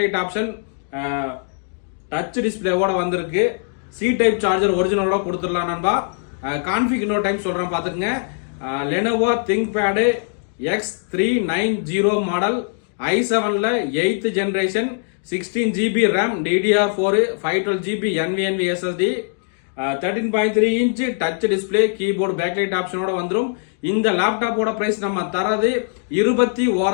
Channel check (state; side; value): silent; right; 65 dB below the other